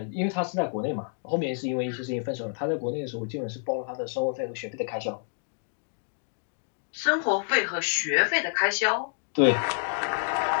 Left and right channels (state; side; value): silent; right; digital silence